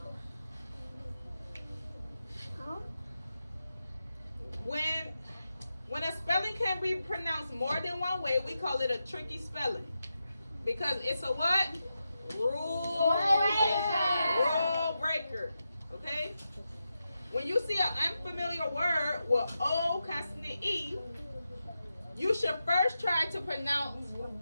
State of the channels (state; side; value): inverted; both; correlation -0.89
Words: When a spelling can be pronounced more than one way, we call it a tricky spelling. Because it's a what? Rule breaker. Okay? When you see an unfamiliar word with O consonant E, you should first try to pronounce